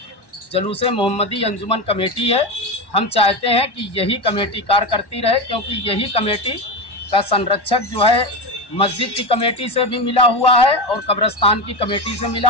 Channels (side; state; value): right; late; 1.1 ms